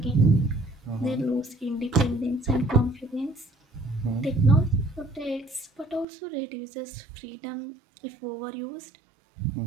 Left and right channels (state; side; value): drops out; left; at 6.1 s